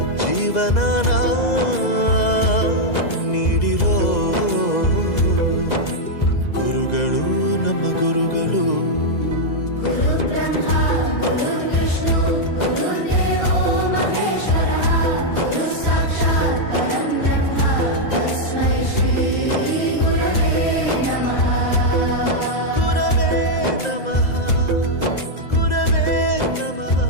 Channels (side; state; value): right; late; 2.0 ms